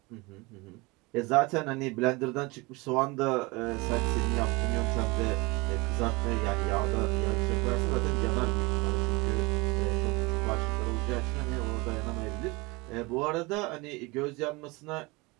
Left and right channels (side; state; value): left; quieter; 25.6 dB